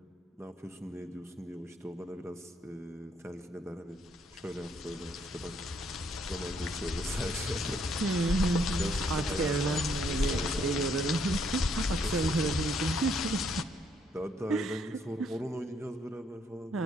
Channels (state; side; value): normal; both; correlation 0.70